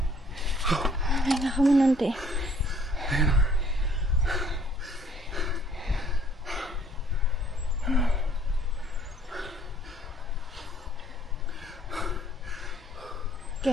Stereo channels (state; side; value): normal; both; correlation 0.59